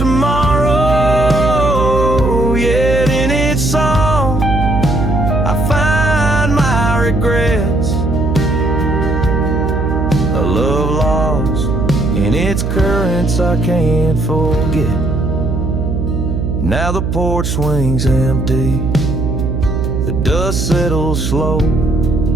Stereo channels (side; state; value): right; noise; hum, 1 dB below the sound